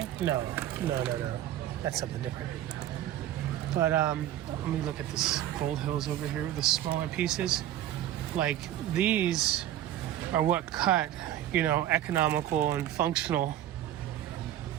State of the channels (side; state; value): left; quieter; 12.3 dB